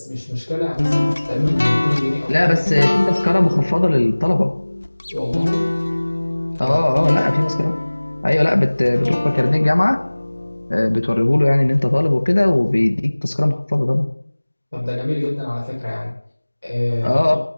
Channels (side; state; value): both; inverted; correlation -1.00